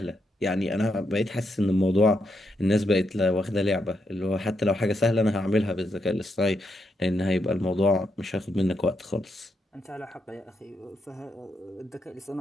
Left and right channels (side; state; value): both; normal; correlation 0.81